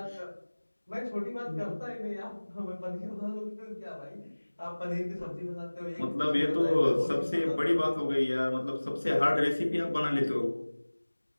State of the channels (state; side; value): inverted; both; correlation -1.00